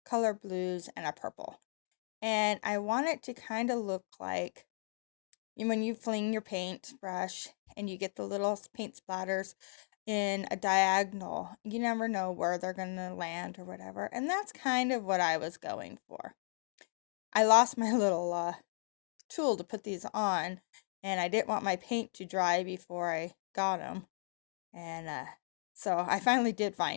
color blues, and a purple. And I want it to kind of look like when you fling your paintbrush and you get the little paint splatters in a diagonal. You never know where they're going to land or whatever. And that's kind of what I was going for. I lost my little tool to put these on, and I didn't want my paint to dry before I got them. And so I finally did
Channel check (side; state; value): right; silent; digital silence